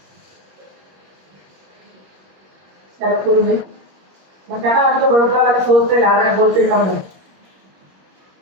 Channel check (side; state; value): left; late; 21 ms